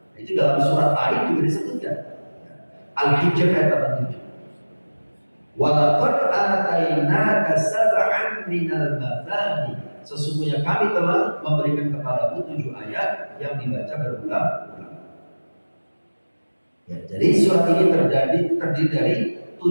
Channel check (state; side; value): inverted; both; correlation -1.00